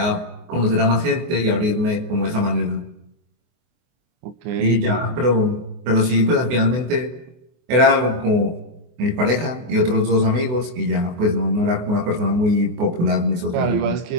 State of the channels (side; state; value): left; late; 24 ms